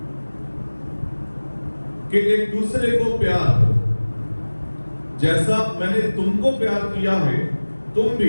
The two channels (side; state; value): both; inverted; correlation -1.00